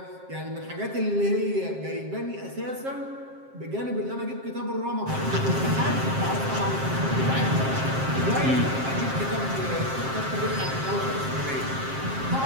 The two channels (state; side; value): late; left; 7.5 ms